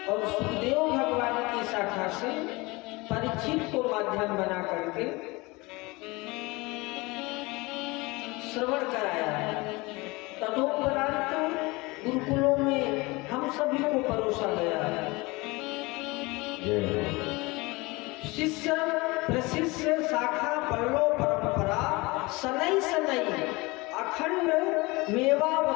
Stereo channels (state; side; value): quieter; right; 23.9 dB